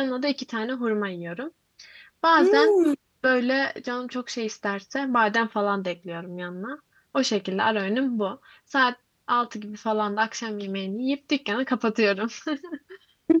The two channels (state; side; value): identical; both; correlation 1.00